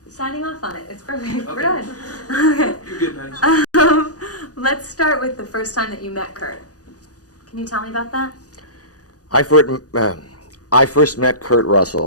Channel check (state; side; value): late; right; 0.67 ms